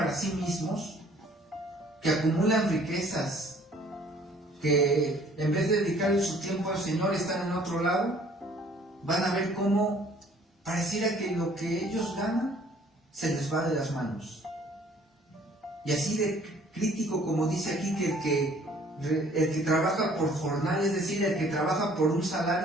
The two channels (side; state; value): both; normal; correlation 0.57